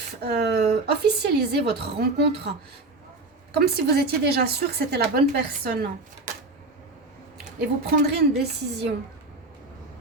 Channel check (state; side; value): quieter; left; 3.1 dB